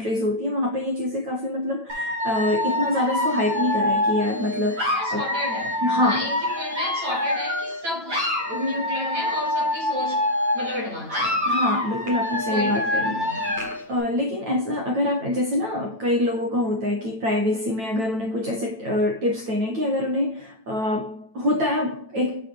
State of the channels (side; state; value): left; late; 9.0 ms